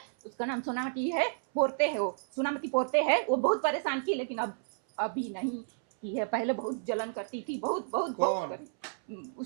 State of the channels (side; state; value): left; silent; 57 dB below the other